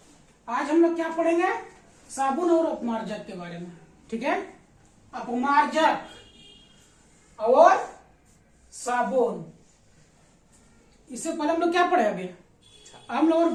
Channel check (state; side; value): identical; both; correlation 1.00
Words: आज हम लोग क्या पढ़ेंगे? साबुन और अपमार्जक के बारे में। ठीक है, अपमार्जक और साबुन। इससे पहले हम लोग क्या पढ़े? अभी हम लोग और